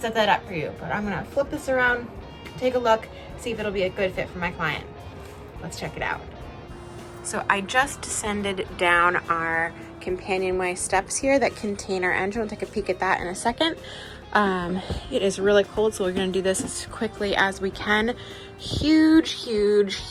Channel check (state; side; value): identical; both; correlation 1.00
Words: that up for you. But I'm gonna flip this around, take a look, see if it'll be a good fit for my client. Let's check it out. So I just descended down our companionway steps here that contain our engine. We'll take a peek at that in a second. It is really cold, so we're gonna do this as quickly as we can. Huge, huge,